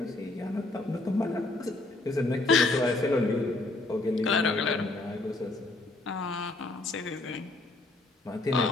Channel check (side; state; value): right; quieter; 3.0 dB